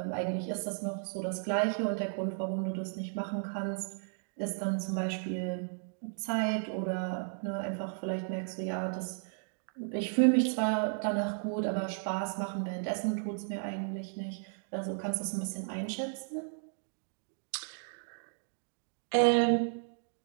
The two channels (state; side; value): silent; left; digital silence